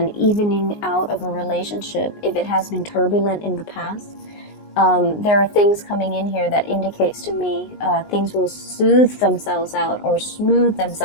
evening out of a relationship if it has been turbulent in the past. There are things coming in here that indicates to me things will soothe themselves out or smooth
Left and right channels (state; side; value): late; right; 19 ms